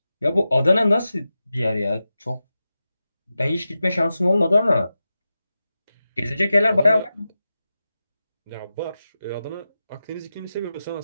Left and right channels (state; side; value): inverted; both; correlation -0.92